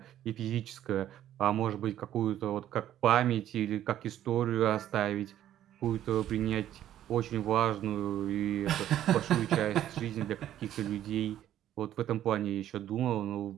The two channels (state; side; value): quieter; left; 11.8 dB